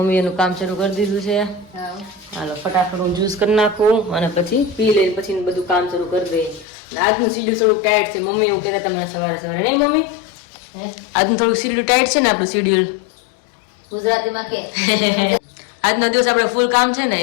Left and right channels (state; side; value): drops out; right; at 6.7 s